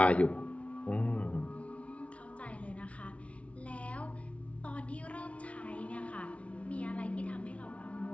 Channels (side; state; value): right; late; 0.063 ms